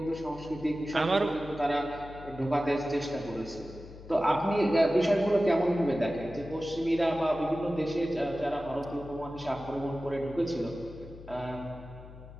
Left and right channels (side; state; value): left; noise; hum, 16 dB below the sound